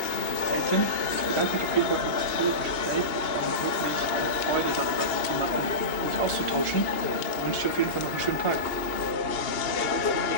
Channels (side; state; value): right; late; 2.8 ms